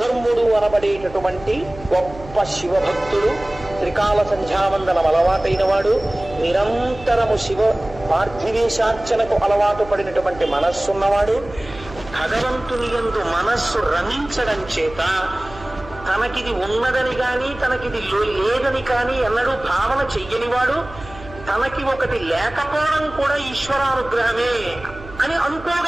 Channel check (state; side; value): noise; right; hum, 17 dB below the sound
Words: అనబడేటటువంటి గొప్ప శివభక్తుడు, త్రికాల సంధ్యావందనం అలవాటైన వాడు, నిరంతరము శివ పార్థివేశార్చనకు అలవాటు పడినటువంటి మనస్సున్నవాడు, భగవంతుని యందు మనస్సు రమించడం చేత తనకిది ఉన్నదని కానీ తనకిది లేదని కానీ ఎన్నడూ భావన చెయ్యనివాడు, తనకి ఒకటి లేకపోవడం కూడా ఈశ్వరానుగ్రహమే అని